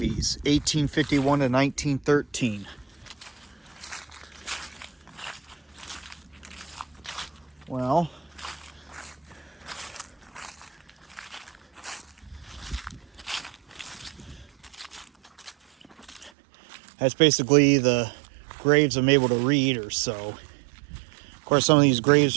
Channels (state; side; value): drops out; left; at 16.3 s